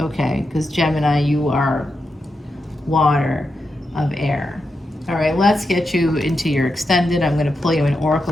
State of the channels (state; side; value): normal; both; correlation 0.87